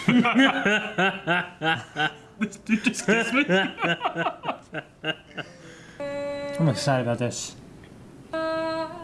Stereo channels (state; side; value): identical; both; correlation 1.00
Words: This dude just kissed me. I'm excited about this.